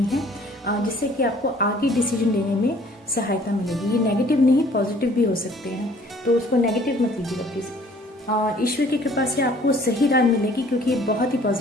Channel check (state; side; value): normal; both; correlation 0.56